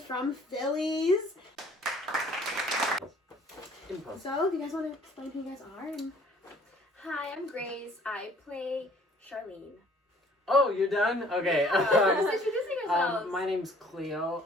from Phillies. Impulse. So, do you guys want to explain who you guys are? And Hi, I'm Grace. I play Charlene. Oh, you're done? Okay. Just introducing yourselves. My name's Cleo.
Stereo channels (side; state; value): both; normal; correlation 0.55